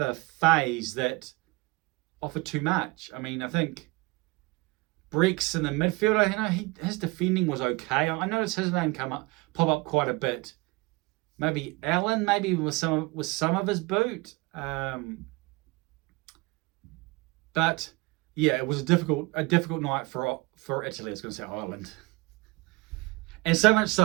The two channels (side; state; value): left; quieter; 24.6 dB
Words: phase that offered too much. I mean, I think Breeks in the midfield, you know, his defending was okay. I noticed his name pop up quite a bit. Maybe Allen, maybe with some of his boot. But yeah, it was a difficult night for Italy. I was going to say Ireland. And so much